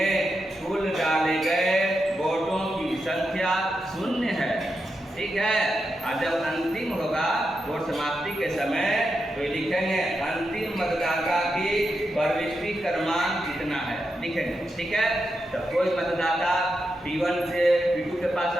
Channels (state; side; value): normal; both; correlation 0.86